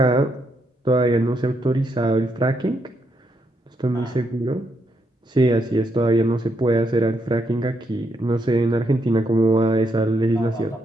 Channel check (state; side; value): normal; both; correlation 0.78